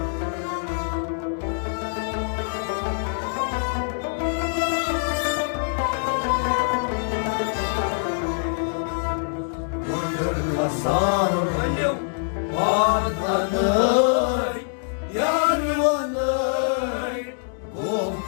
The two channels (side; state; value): right; silent; digital silence